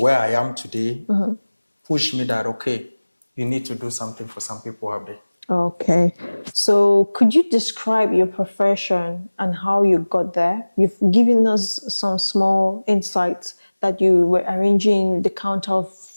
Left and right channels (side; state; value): both; inverted; correlation -1.00